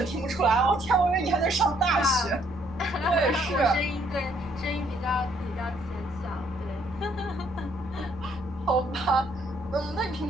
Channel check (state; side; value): normal; both; correlation 0.67